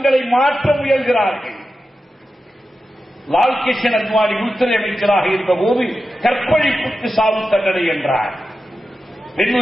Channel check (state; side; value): normal; both; correlation 0.92